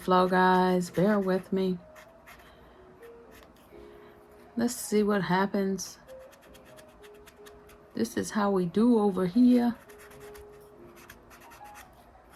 guys. Bear with me. Let's see what happens. This is how we do over here.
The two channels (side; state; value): both; identical; correlation 1.00